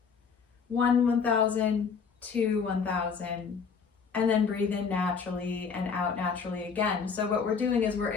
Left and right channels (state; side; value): quieter; right; 5.9 dB